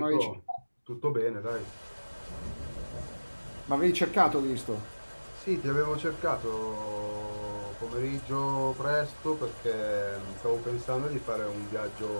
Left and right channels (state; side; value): inverted; both; correlation -1.00